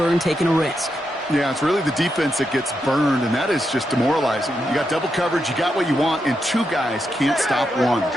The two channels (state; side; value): normal; both; correlation 0.84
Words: taking a risk. Yeah, it's really the defense that gets burned, and that is just demoralizing. You got double coverage, you got what you want, and two guys can't stop one.